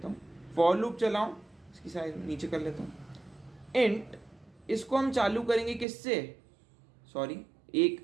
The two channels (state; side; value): drops out; left; at 5.9 s